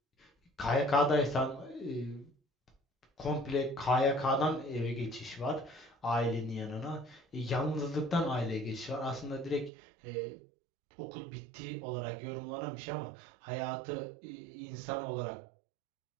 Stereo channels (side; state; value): left; drops out; at 9.7 s